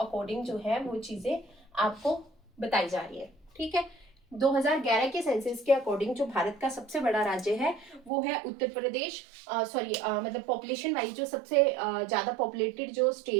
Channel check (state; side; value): drops out; left; at 8.1 s